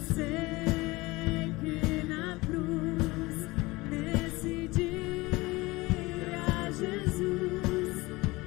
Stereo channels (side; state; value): right; quieter; 21.8 dB